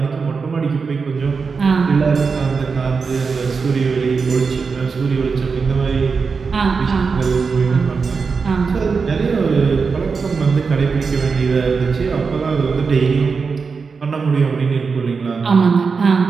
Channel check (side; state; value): left; quieter; 5.1 dB